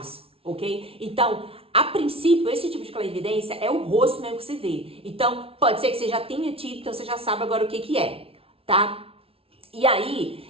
ok? Então, a princípio, esse tipo de clarividência é o rosto mesmo que você vê. Então, pode ser que você já tenha tido, então você já sabe agora o que é, tá? E aí,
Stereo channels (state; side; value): late; left; 0.27 ms